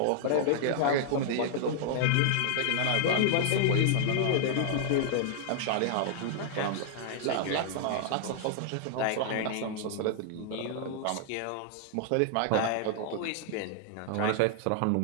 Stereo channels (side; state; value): both; different; correlation -0.01